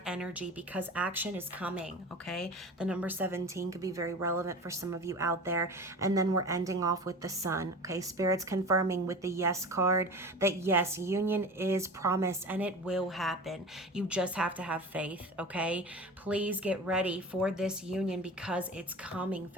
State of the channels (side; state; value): both; normal; correlation 0.34